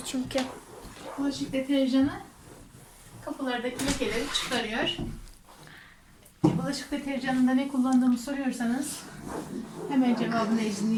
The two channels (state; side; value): identical; both; correlation 1.00